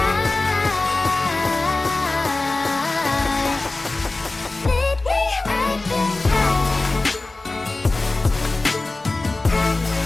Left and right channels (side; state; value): right; quieter; 3.2 dB